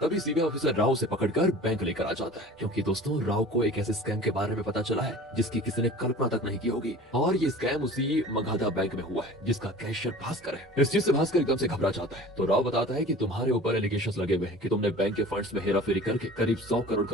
तभी सीबीआई ऑफिसर राव से पकड़कर बैंक लेकर आ जाता है। क्योंकि दोस्तों राव को एक ऐसे स्कैम के बारे में पता चला है जिसकी किसी ने कल्पना तक नहीं की होगी, और ये स्कैम उसी मगधा बैंक में हुआ है जिसका कैशियर भास्कर है। इस चीज से भास्कर एकदम से घबरा जाता है। तो राव बताता है कि तुम्हारे ऊपर एलिगेशंस लगे हुए हैं कि तुमने बैंक के फंड्स में हेराफेरी करके करीब 100 करोड़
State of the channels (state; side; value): normal; both; correlation 0.42